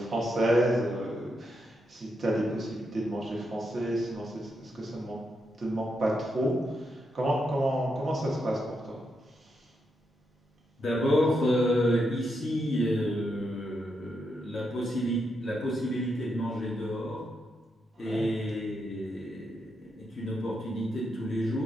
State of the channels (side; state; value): both; normal; correlation 0.82